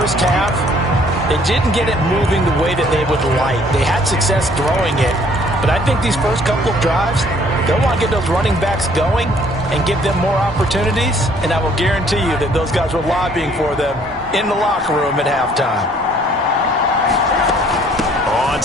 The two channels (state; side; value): normal; both; correlation 0.60